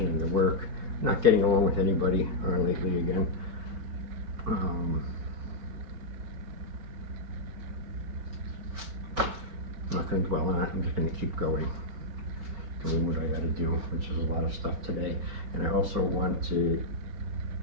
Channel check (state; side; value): late; left; 5.2 ms